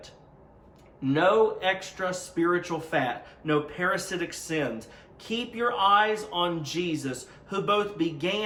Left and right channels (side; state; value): both; identical; correlation 1.00